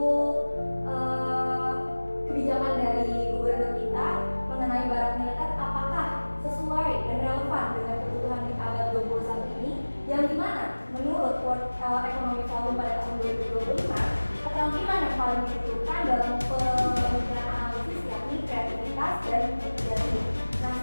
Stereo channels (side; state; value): both; inverted; correlation -1.00